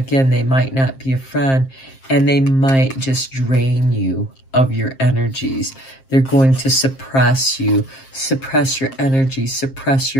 they might not be a friend, and they might just drain you of your energies. They're going to suppress you, suppress your energy, suppress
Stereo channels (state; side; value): late; right; 7.5 ms